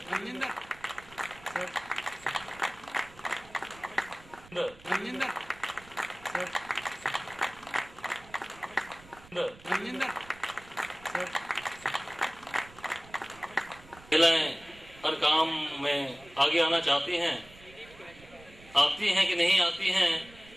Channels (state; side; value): noise; right; rumble, 22 dB below the sound